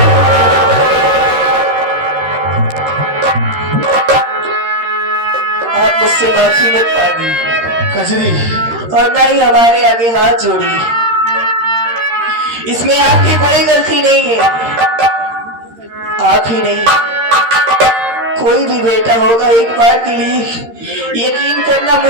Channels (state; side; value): late; left; 13 ms